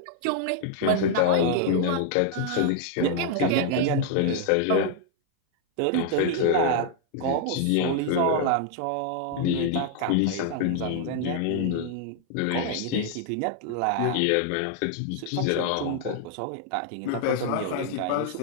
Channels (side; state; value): both; different; correlation 0.00